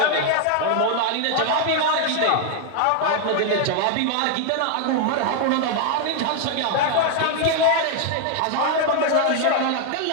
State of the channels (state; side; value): different; both; correlation 0.00